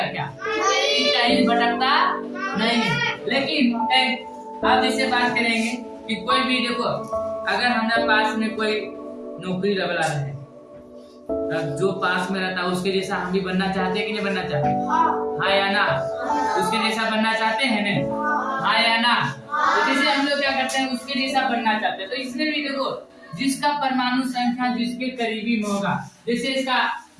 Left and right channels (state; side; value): identical; both; correlation 1.00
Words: क्या? कहीं भटकता नहीं है। लेकिन आप इससे बात करेंगे कि कोई भी देखो, अगर हमारे पास में कोई नौकरी वाला है, जो पास में रहता है उसके जैसा हम भी बनना चाहते हैं कि नहीं बनना चाहते? हाँ या ना? उसके जैसा बनना चाहते हैं ना? हाँ या ना? तो जैसे हम लोग क्या करते हैं, उसके जैसा बनना चाहते हैं। तो इसमें भी देखो, जिसका परमाणु संख्या जिसके करीबी में होगा, जैसे इसका